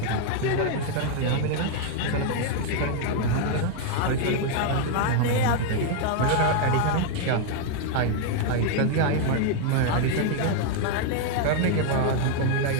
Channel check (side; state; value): both; different; correlation 0.00